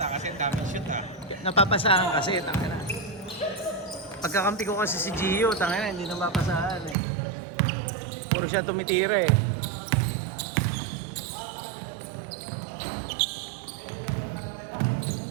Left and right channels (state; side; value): drops out; left; at 7.0 s